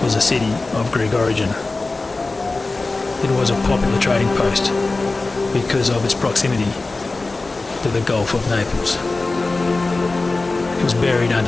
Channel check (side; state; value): right; quieter; 3.4 dB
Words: was a city of Greek origin. It was a popular trading post because of its proximity to the Gulf of Naples. It was buried